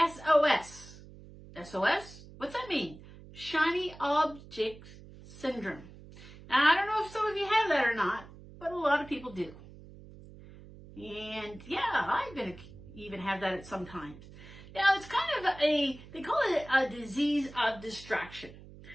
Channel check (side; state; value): right; noise; hum, 18 dB below the sound